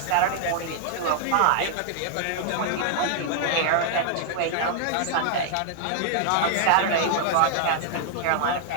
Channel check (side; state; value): both; different; correlation 0.00